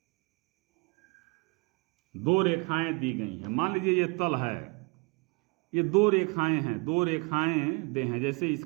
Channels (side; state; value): left; quieter; 30.7 dB